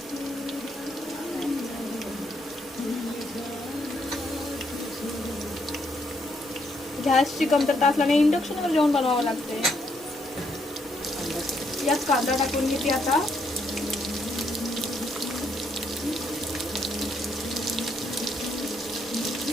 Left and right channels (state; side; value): normal; both; correlation 0.74